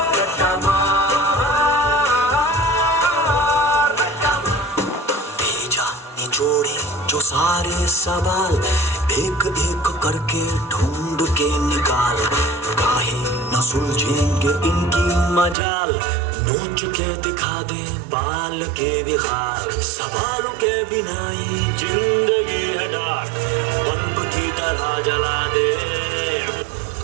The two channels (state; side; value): drops out; left; at 15.6 s